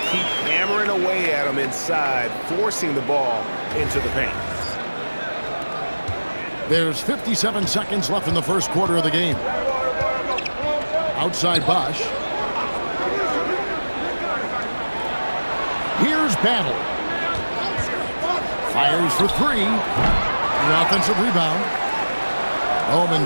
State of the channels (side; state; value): both; inverted; correlation -1.00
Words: keep hammering away at him inside, forcing the ball into the paint. There's 57 seconds left in the first quarter of the game. Outside Bosch. Here's Battle. Fires for three. The offensive rebound.